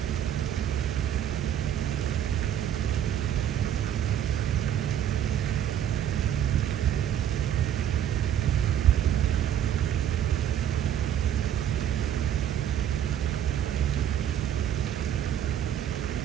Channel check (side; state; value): left; quieter; 10.1 dB